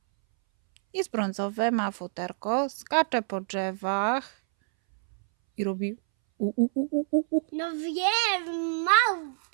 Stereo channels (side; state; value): left; silent; 60 dB below the other